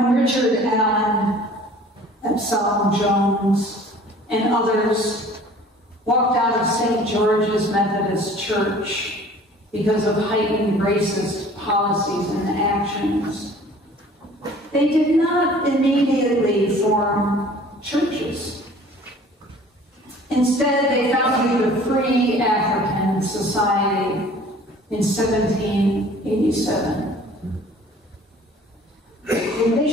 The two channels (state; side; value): normal; both; correlation 0.49